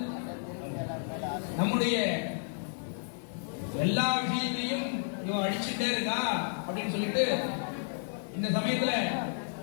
நம்முடைய எல்லா விஷயத்தையும் இவன் அழிச்சுட்டே இருக்கா அப்படின்னு சொல்லிட்டு இந்த சமயத்துல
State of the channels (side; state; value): right; silent; 57 dB below the other